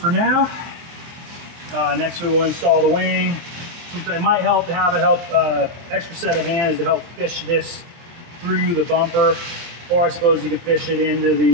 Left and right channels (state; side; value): late; left; 23 ms